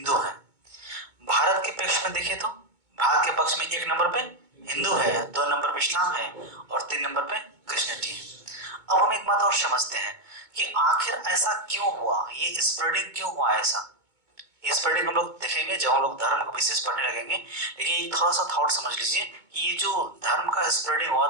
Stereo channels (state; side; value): late; left; 2.2 ms